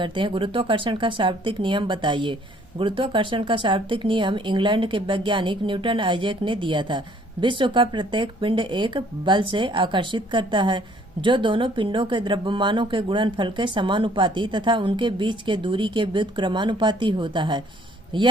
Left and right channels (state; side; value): normal; both; correlation 0.59